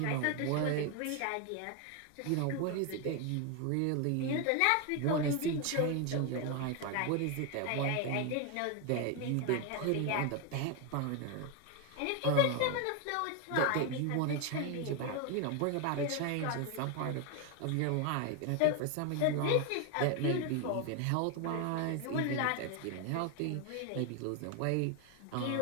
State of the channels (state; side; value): different; both; correlation 0.01